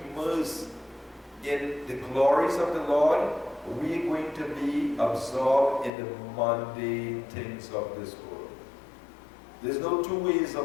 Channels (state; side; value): drops out; right; at 5.9 s